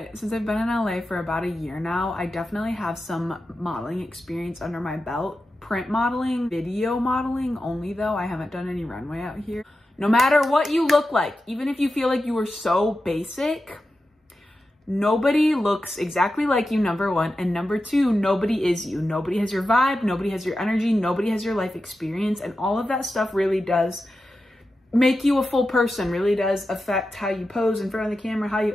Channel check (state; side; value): normal; both; correlation 0.91